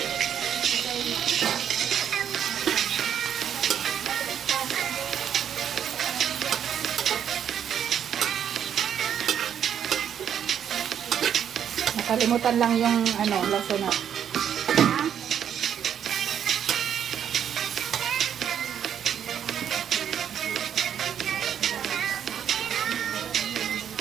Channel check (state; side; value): quieter; left; 9.0 dB